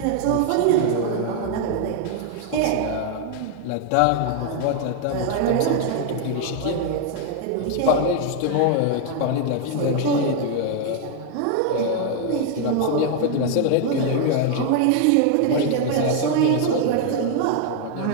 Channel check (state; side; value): different; both; correlation 0.00